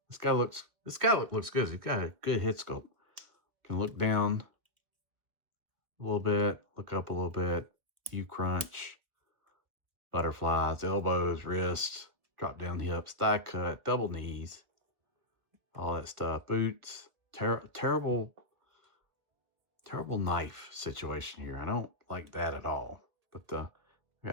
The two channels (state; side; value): late; left; 1.8 ms